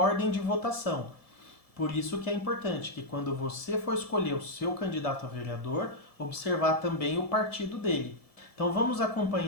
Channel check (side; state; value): right; late; 1.7 ms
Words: de votação. Por isso que é importante que quando você for escolher o seu candidato a vereador, observar também o partido dele. Então vamos